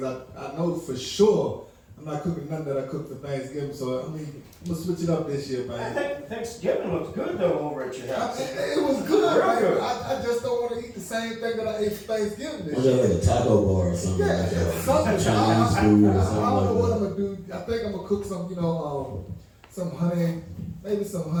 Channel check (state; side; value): identical; both; correlation 1.00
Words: I know for sure I'm not cooking nothing that I cooked for Thanksgiving, so I mean, I'm going to switch it up this year, man. I think Thanksgiving looks good, though, over at your house. It was good, Real man. good. I just don't want to eat the same thing that I ate for Thanksgiving this Was year. that like a taco bar or something like that? Something. Chinese food or I something don't know like what that. I'm going to do. I think I'm going to cook some, some honey, maybe some